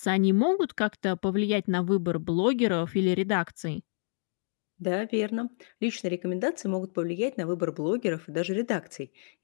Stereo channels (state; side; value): silent; right; 59 dB below the other